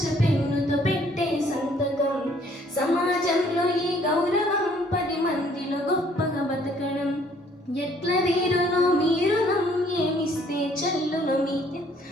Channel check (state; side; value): normal; both; correlation 0.61